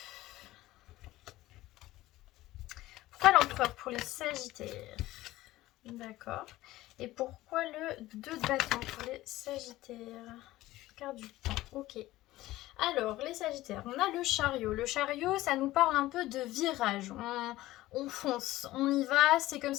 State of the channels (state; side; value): quieter; right; 16.7 dB